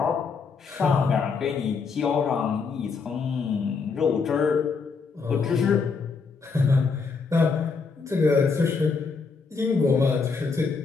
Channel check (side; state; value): right; quieter; 4.9 dB